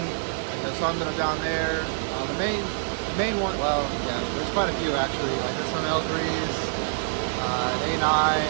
and some that are down there. The main one, well, yeah, there's quite a few actually. Like there's some L3s, an A9,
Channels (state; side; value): silent; left; digital silence